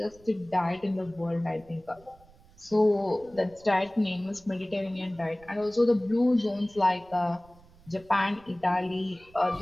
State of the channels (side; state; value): right; noise; rumble, 26 dB below the sound